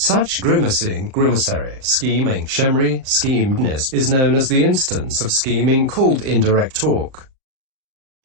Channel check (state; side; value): late; left; 38 ms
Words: grimacing, grimacary, scheming, shemri, schemedness is known as the instance of scheming called indirect talk.